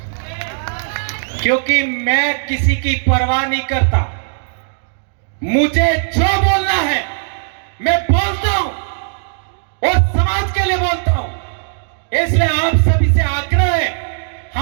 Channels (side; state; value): left; silent; digital silence